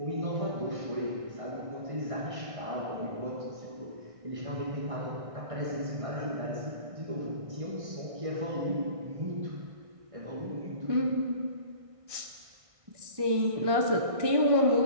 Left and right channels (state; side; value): late; left; 1.6 ms